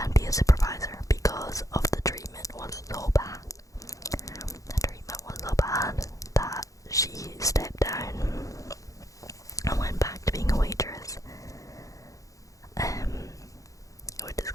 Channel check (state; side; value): late; right; 0.16 ms